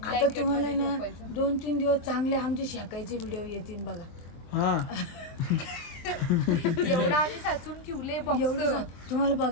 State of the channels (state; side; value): late; right; 23 ms